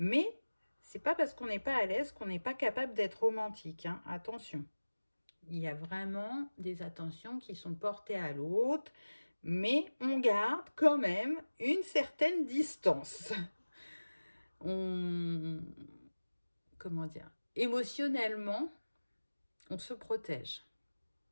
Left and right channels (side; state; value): both; inverted; correlation -1.00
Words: c'est pas parce qu'on n'est pas à l'aise qu'on n'est pas capable d'être romantique, hein. Attention. Il y a vraiment des attentions qui sont portées à l'autre, mais on garde quand même une certaine distance. Comment dire? Émotionnellement, on se protège.